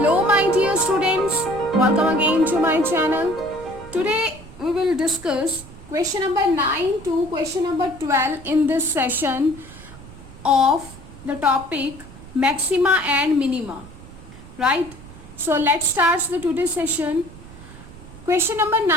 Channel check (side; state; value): right; noise; rumble, 18 dB below the sound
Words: my dear students, welcome again to my channel. Today we will discuss question number 9 to question number 12 in this session of the topic maxima and minima, right? So let's start the today's session. Question number